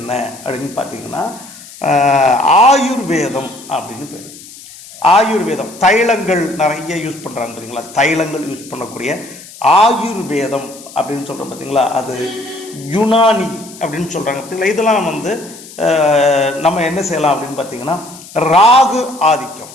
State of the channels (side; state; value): left; noise; hiss, 18 dB below the sound